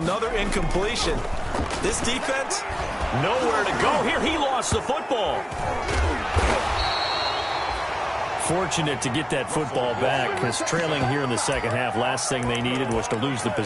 incompletion. This defense, nowhere to go here. He lost the football. Fortunate to get that football back, because trailing here in the second half, last thing they needed was to lose the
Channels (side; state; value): both; identical; correlation 1.00